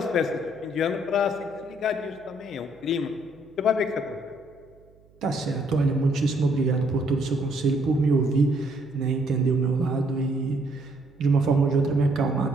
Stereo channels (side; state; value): right; noise; hum, 29 dB below the sound